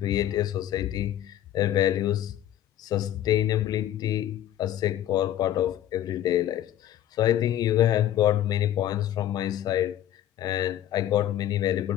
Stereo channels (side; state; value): right; quieter; 12.1 dB